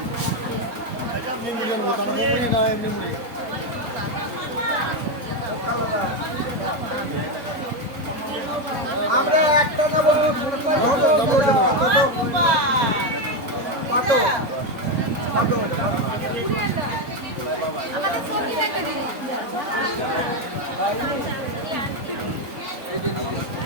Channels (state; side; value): late; left; 3.9 ms